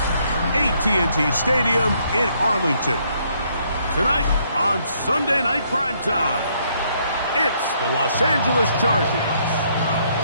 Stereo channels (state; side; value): inverted; both; correlation -0.69